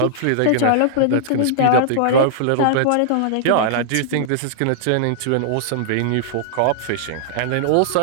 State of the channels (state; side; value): different; both; correlation -0.01